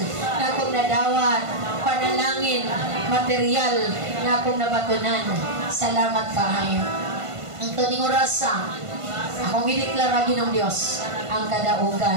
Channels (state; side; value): late; left; 1.5 ms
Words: na akong nadawat. Panalangin material na akong nabatunan. Salamat kaayo. Ang taning orasa, akong gideklara Ginoong Dios ang